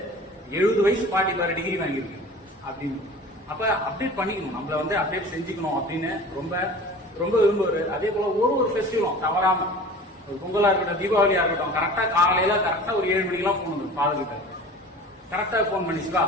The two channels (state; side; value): normal; both; correlation 0.40